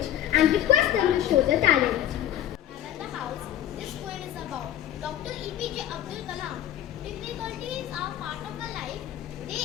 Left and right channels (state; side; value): quieter; right; 11.8 dB